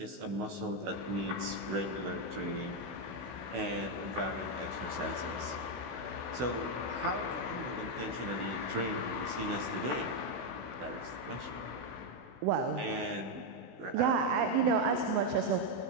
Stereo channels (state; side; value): late; left; 16 ms